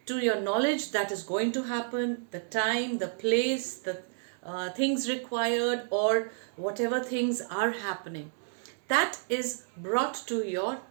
to your knowledge that is going to happen, the time, the place, the things required, or whatever things are happening. That is brought to your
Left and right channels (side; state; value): left; silent; digital silence